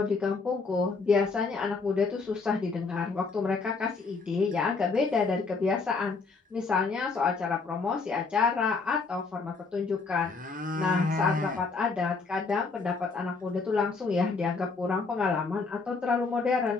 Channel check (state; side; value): quieter; right; 4.4 dB